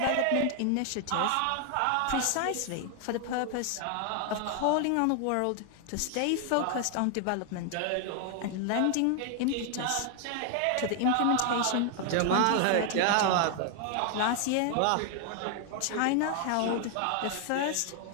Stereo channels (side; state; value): both; different; correlation 0.00